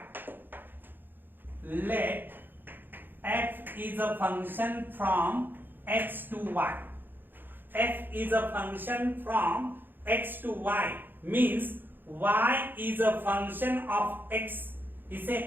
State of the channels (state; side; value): late; left; 0.095 ms